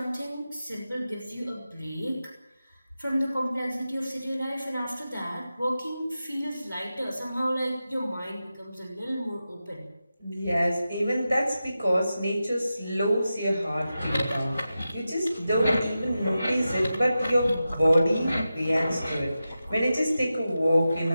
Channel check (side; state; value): both; inverted; correlation -0.92